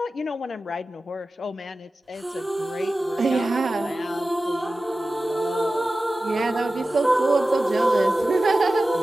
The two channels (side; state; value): both; normal; correlation 0.95